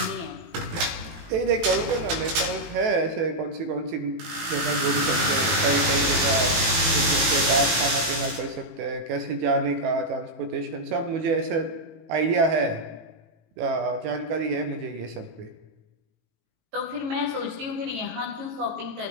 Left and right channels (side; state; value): left; late; 19 ms